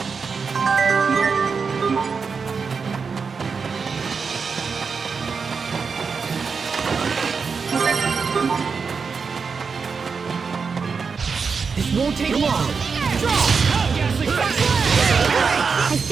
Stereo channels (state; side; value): quieter; left; 5.3 dB